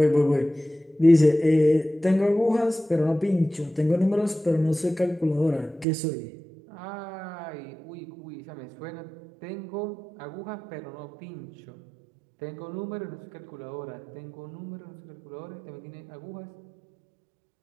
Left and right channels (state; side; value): drops out; left; at 5.9 s